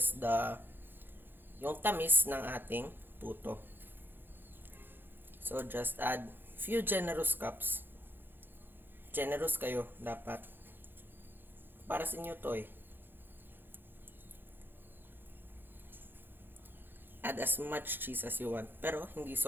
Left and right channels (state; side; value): late; left; 0.098 ms